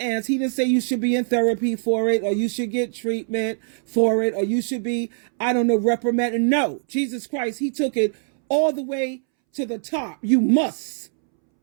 He didn't say you should be in therapy for it, or you should get treatment for it, or you should be, reprimanded. No, Jesus Christ, he took it all the way to the top. You must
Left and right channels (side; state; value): left; silent; 64 dB below the other